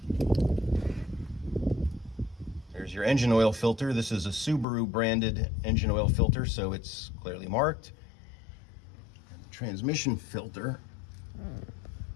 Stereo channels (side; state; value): right; drops out; at 4.7 s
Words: There's your engine oil filter. This is a Subaru branded engine oil filter, so it's clearly marked. And the transmission filter